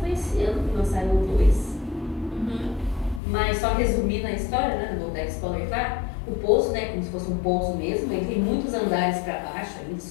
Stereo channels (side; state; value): right; drops out; at 3.2 s